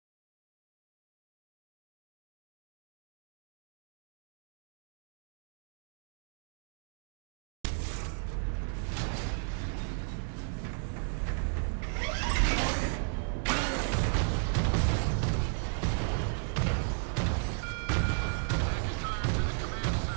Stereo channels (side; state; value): left; silent; 55 dB below the other